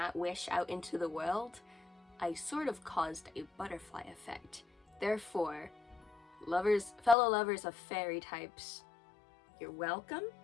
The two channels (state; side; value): drops out; right; at 7.2 s